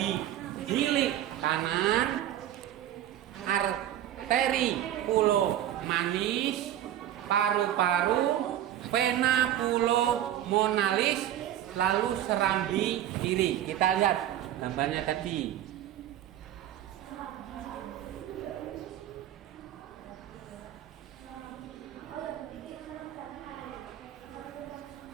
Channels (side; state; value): left; quieter; 11.9 dB